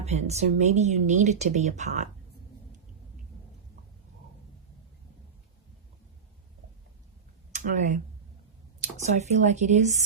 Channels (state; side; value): quieter; left; 6.2 dB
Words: So maybe you needed to be apart. Okay, so I feel like it